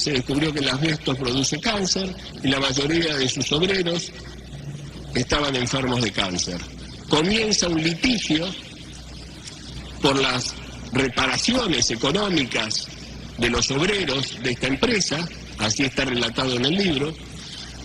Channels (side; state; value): both; identical; correlation 1.00